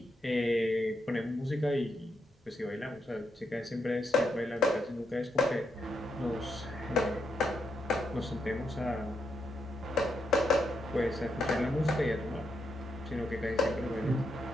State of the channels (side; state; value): both; normal; correlation 0.81